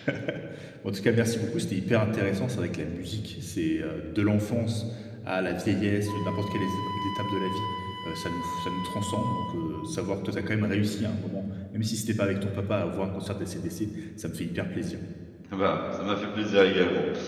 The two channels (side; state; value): both; identical; correlation 1.00